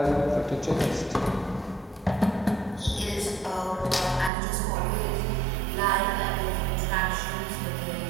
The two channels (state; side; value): drops out; left; at 4.3 s